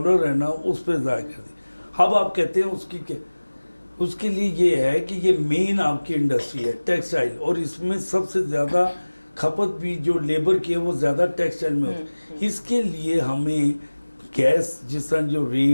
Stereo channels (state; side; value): inverted; both; correlation -1.00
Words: ہے نا اس پہ ضائع کر دیا. اب آپ کہتے ہیں اس کے لیے یہ ہے کہ یہ مین آپ کی انڈسٹری ہے ٹیکسٹائل, اور اس میں سب سے زیادہ کھپت بھی جو لیبر کی ہے وہ زیادہ ٹیکسٹائل میں ہوتی ہے. اس کے لیے ہمیں گیس جس طرح جو